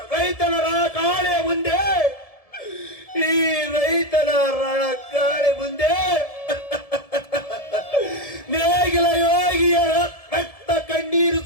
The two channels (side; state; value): right; late; 1.7 ms